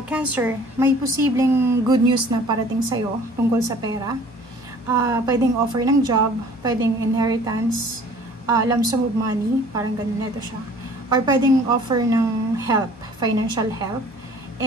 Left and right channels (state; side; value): normal; both; correlation 0.51